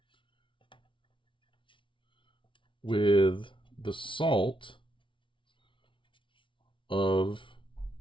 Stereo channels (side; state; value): right; late; 0.25 ms